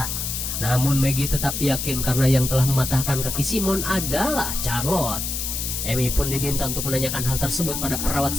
Namun Maggie tetap yakin karena yang telah mematahkan kaki Simon adalah Charlotte. Amy pun diminta untuk menanyakan hal tersebut pada perawat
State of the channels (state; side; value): noise; left; hiss, 3 dB below the sound